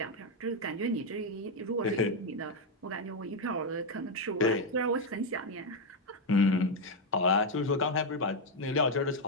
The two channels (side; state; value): both; normal; correlation 0.03